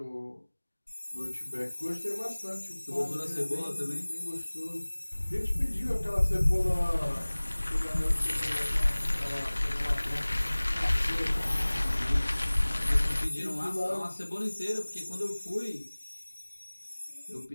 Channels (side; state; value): both; inverted; correlation -1.00